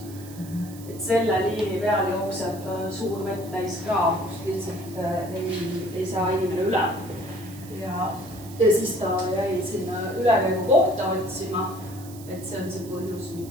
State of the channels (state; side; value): noise; right; hiss, 19 dB below the sound